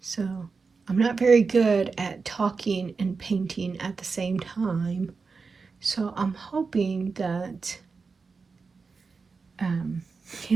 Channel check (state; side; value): quieter; left; 4.7 dB